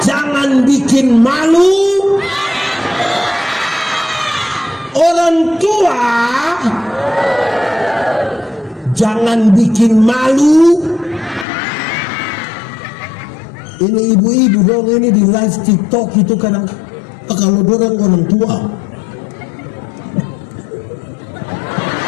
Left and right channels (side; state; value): right; drops out; at 11.5 s